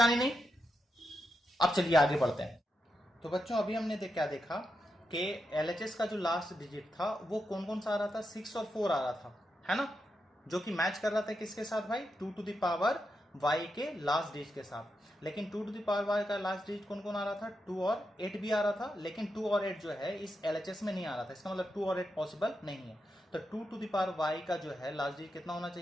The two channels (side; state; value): both; normal; correlation 0.85